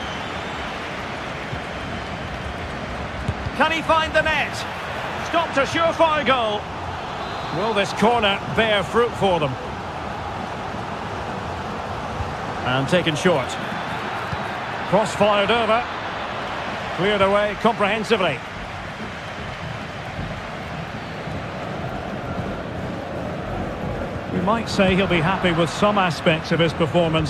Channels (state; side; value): identical; both; correlation 1.00